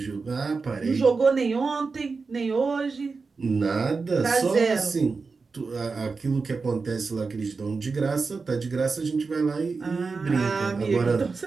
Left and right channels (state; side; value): quieter; left; 4.5 dB